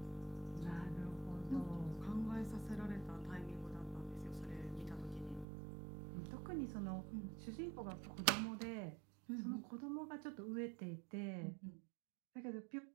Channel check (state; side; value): drops out; left; at 5.5 s